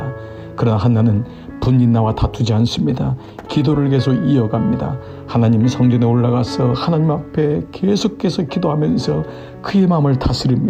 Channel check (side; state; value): both; identical; correlation 1.00